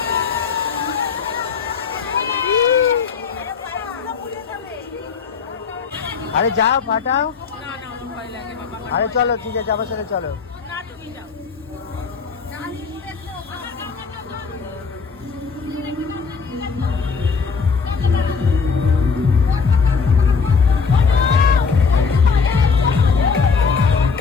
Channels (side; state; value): right; quieter; 5.4 dB